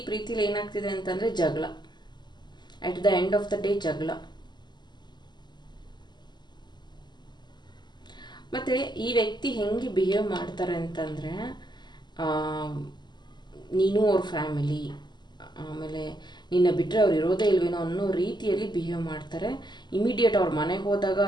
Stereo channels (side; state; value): right; late; 0.21 ms